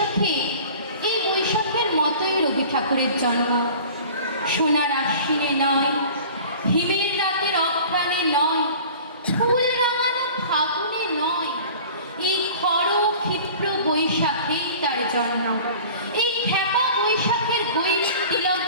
বৈশাখের মতোই রবি ঠাকুরের জন্ম। সোনার আশ্বিনে নয়, হিমের রাতের অঘ্রাণে নয়, ফুল রাঙানো ফাগুনে নয়, এই খড় ক্ষিপ্র বৈশাখেই তার জন্ম। এই খ্যাপা বৈশাখের গৈরিক তিলক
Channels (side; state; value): both; inverted; correlation -0.43